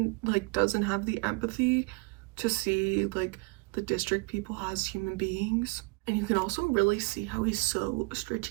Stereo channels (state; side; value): quieter; left; 29.4 dB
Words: like doesn't have the empathy to see like the district people as human beings. And you can also really see how he's so